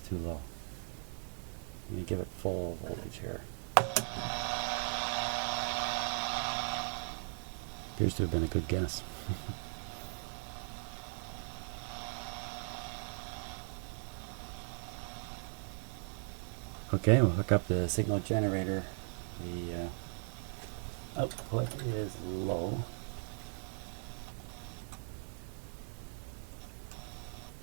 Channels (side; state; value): left; silent; 52 dB below the other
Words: low. I'm going to give it full voltage here. Appears to have been a good guess. Okay, we'll hook up the signal generator. The output is low.